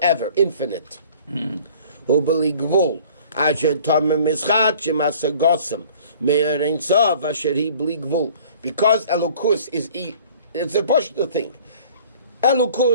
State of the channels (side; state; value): both; inverted; correlation -0.50